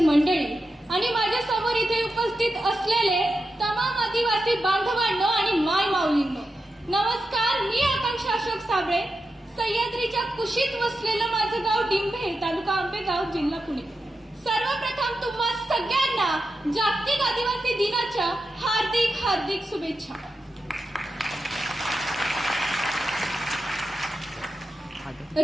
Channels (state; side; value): normal; both; correlation 0.90